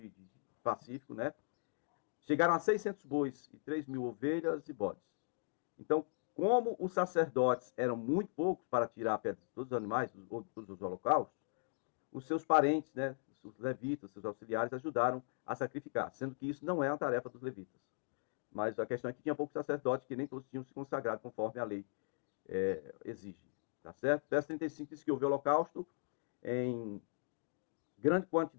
de pacífico, né? Chegaram a 600 bois e 3.000 ovelhas e bodes. Então, como os sacerdotes eram muito poucos para tirar a pedra de todos os animais, todos os holocaustos, os seus parentes, né, os levitas, seus auxiliares, ajudaram a sacrificar, sendo que isso não é uma tarefa dos levitas. Mas a questão é que tinha poucos sacerdotes, que nem todos tinham se consagrado conforme a lei exige. Tá certo? Verso 35 diz que houve holocausto em grande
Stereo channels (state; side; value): silent; right; digital silence